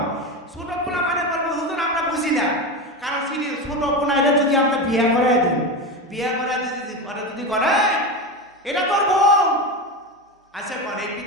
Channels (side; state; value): both; normal; correlation 0.19